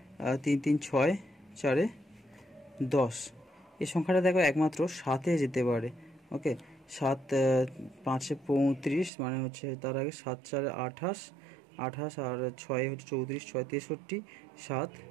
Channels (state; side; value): drops out; left; at 9.1 s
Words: 3 3 6 4 10। এই সংখ্যাটা দেখো একমাত্র 7-এ যেতে পারে। ওকে, 7 5 35 মানে হচ্ছে তার আগে 7 4 28 28 আর 6 হচ্ছে 34, 6 63, 7